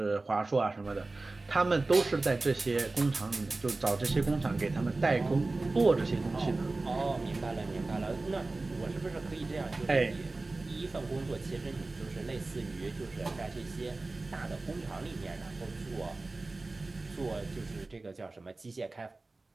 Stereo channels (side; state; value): left; quieter; 3.3 dB